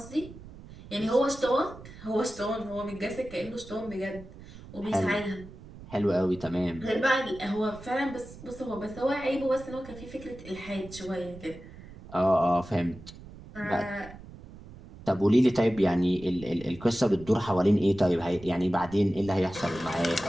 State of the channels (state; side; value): noise; right; rumble, 17 dB below the sound